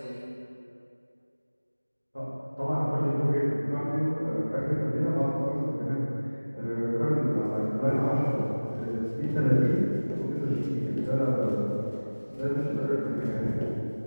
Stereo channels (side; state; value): both; inverted; correlation -1.00